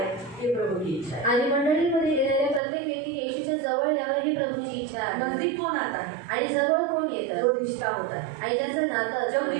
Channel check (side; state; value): left; drops out; at 2.6 s